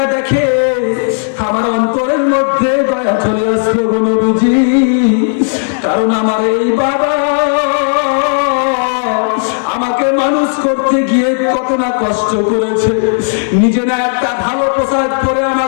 দেখে আমার অন্তরের মধ্যে দয়া চলে আসলো গো নবীজি, কারণ আমার এই বাবা আমাকে মানুষ করতে গিয়ে কত না কষ্ট করেছে। নিজে না একটা ভালো পোশাক পরে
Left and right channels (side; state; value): right; silent; digital silence